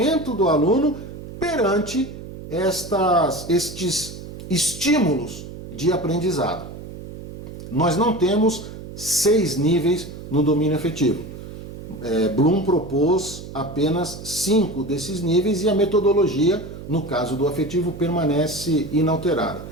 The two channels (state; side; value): noise; right; hum, 12 dB below the sound